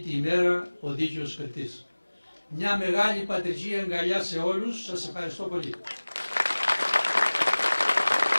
ημέρα ο δίκαιος κριτής. Μια μεγάλη πατριζή αγκαλιά σε όλους, σας ευχαριστώ πολύ.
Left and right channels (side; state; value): both; inverted; correlation -1.00